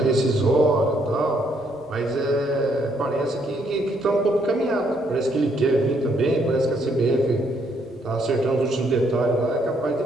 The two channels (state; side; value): normal; both; correlation 0.71